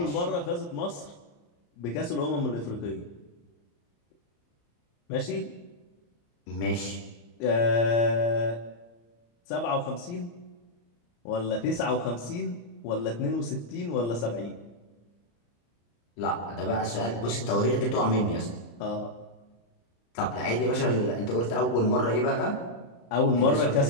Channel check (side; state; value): right; late; 34 ms